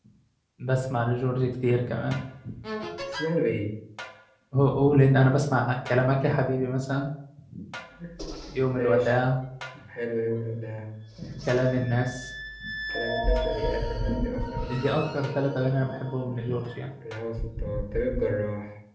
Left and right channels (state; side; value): identical; both; correlation 1.00